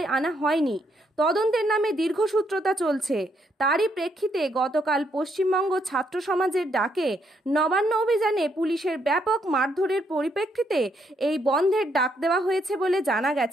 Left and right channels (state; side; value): normal; both; correlation 0.74